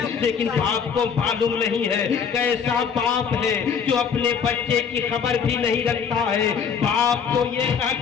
لیکن باپ کو معلوم نہیں ہے، کیسا باپ ہے جو اپنے بچے کی خبر بھی نہیں رکھتا ہے۔ باپ کو یہ کہا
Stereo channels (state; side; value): quieter; right; 6.7 dB